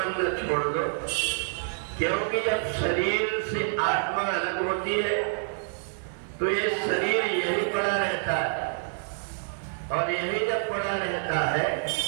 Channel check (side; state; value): left; silent; digital silence